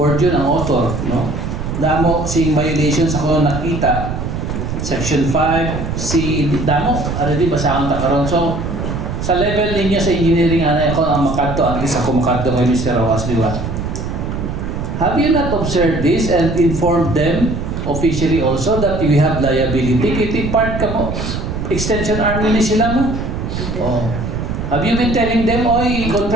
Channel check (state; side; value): noise; right; rumble, 4 dB below the sound